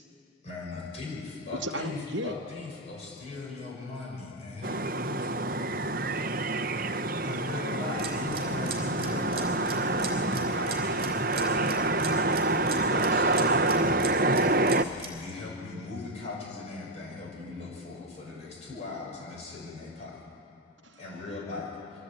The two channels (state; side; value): normal; both; correlation 0.05